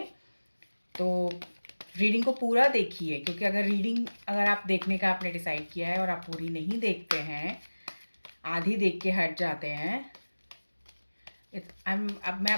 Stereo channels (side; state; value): both; inverted; correlation -1.00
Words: तो रीडिंग को पूरा देखिए क्योंकि अगर आप देखने का आपने डिसाइड किया है और आप पूरी नहीं देखते हैं, आधी देख के हट जाते हैं, अब मैं